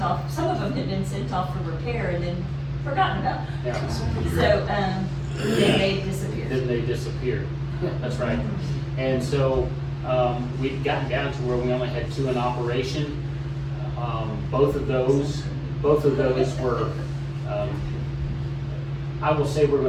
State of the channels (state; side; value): identical; both; correlation 1.00